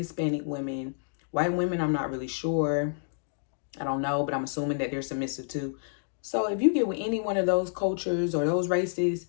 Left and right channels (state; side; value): silent; right; digital silence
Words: women. White women, I'm not really sure. I don't know, but I'm assuming that they're submissive too. So if you get with any one of those cultures or those races,